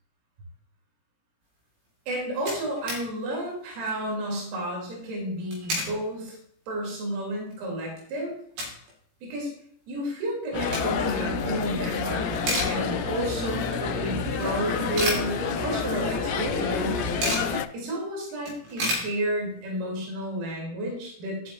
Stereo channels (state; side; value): late; left; 17 ms